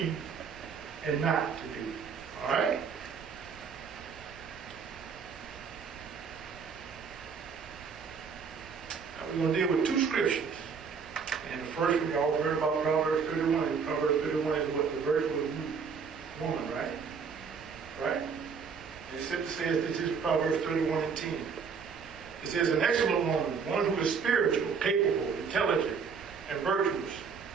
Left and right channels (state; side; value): quieter; left; 5.9 dB